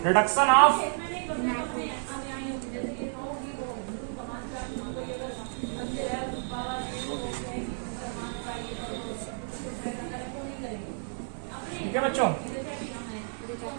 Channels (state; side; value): silent; left; digital silence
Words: रिडक्शन ऑफ ठीक है बच्चों।